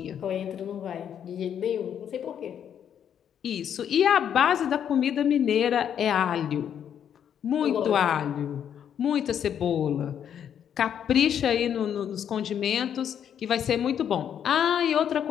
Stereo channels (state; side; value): quieter; right; 8.9 dB